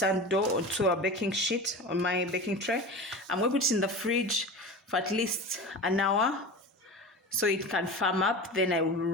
dough onto a baking sheet on my baking tray. I'm going to put it in the fridge for at least an hour so it can firm up. Then I will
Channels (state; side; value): normal; both; correlation 0.31